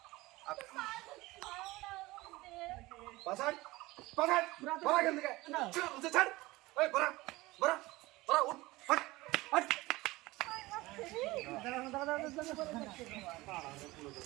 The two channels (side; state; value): left; quieter; 20.3 dB